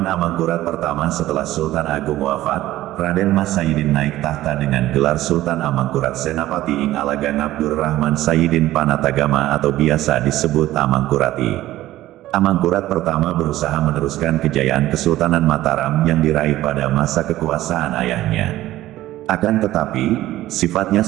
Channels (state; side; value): quieter; left; 15.2 dB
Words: Amangkurat pertama setelah Sultan Agung wafat, Raden Mas Saidin naik tahta dengan gelar Sultan Amangkurat Senapati Ing Alagang Abdur Rahman Saidin Panatagama atau biasa disebut Amangkurat I. Amangkurat pertama berusaha meneruskan kejayaan Kesultanan Mataram yang diraih pada masa kekuasaan ayahnya. Akan tetapi, sifatnya